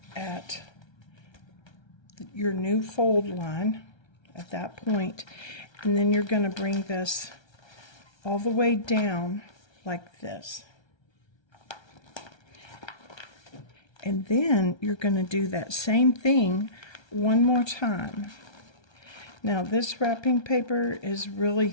at your new fold line at that point, and then you're going to bring this all the way down like this. And then you're going to do that same thing one more time. Now this wrapping paper is really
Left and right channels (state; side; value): late; right; 1.3 ms